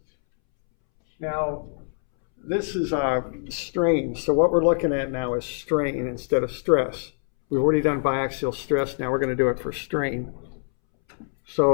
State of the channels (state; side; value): silent; right; 62 dB below the other